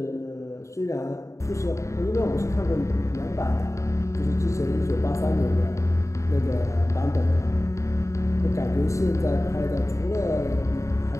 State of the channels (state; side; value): late; right; 0.15 ms